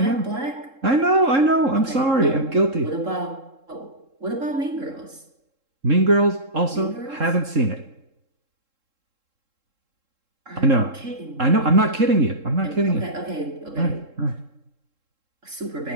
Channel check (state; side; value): late; left; 3.7 ms